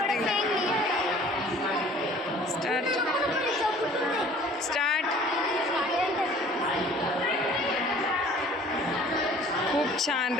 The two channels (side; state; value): both; normal; correlation 0.51